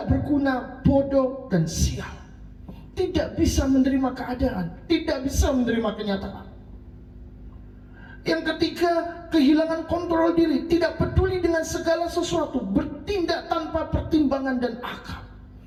berguna, bodoh, dan sial. Tidak bisa menerima keadaan, tidak bisa menerima kenyataan. Yang ketiga, kehilangan kontrol diri, tidak peduli dengan segala sesuatu, bertindak tanpa pertimbangan dan akal.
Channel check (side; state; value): both; identical; correlation 1.00